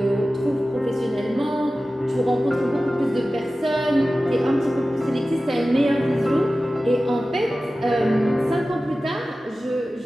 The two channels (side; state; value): both; normal; correlation 0.95